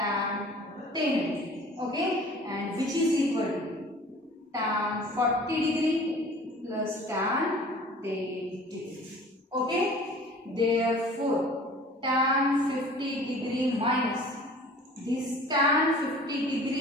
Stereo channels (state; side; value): normal; both; correlation 0.46